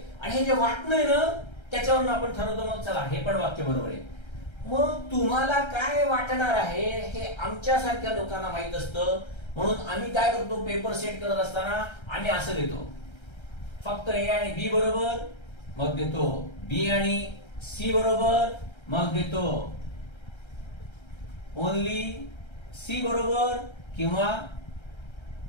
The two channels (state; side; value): late; right; 1.3 ms